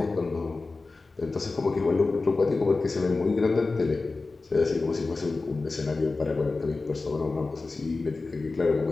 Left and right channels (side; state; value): right; quieter; 3.7 dB